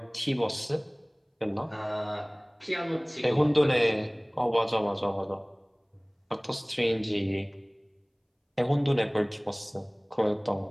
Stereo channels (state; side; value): identical; both; correlation 1.00